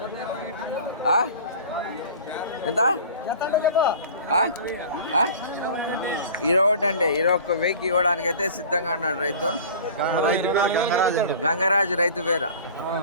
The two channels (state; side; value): inverted; both; correlation -0.41